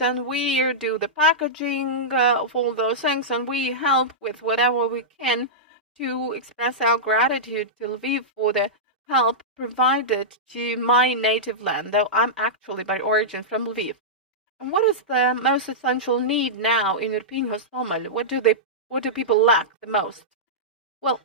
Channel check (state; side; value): normal; both; correlation -0.13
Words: and we do the packaging of all those things, and we help with whatever we can to express our gratitude to Lviv for the help provided to my native land, though I'm actually by origin from Lviv. And what is the most essential need now in Irpin, Hostomel? What do people lack the most? Well,